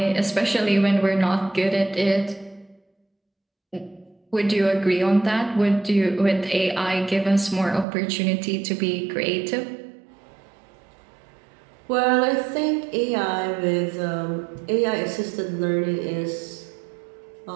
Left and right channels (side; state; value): left; drops out; at 7.9 s